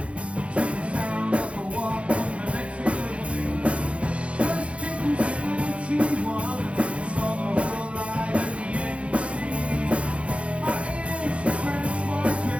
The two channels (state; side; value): late; left; 0.061 ms